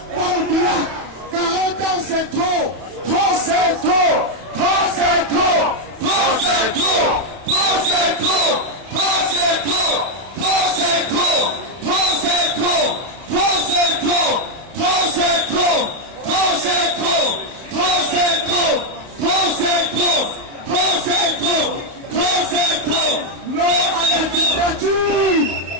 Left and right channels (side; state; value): left; late; 31 ms